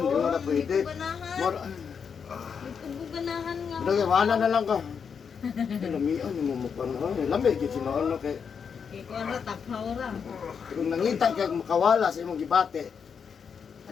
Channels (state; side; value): quieter; right; 6.5 dB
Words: mo na pwede. Ganahan. More, Ganahan nga. Dagay, wala na lang ka. Lamian, yung mumukha na. Lamig, yung sinoon na kay... Kaya ko ano, taphaw ra. Kung nangita ka makawala sa imong gibate,